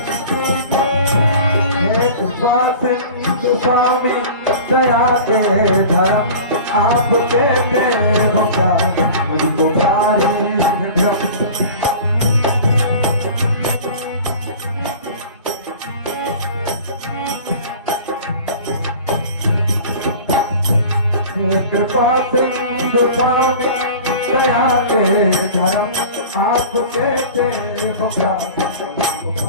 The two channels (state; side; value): inverted; both; correlation -0.39